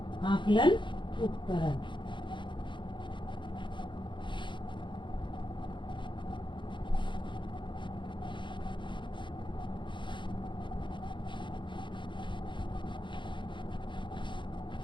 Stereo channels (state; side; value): late; right; 0.23 ms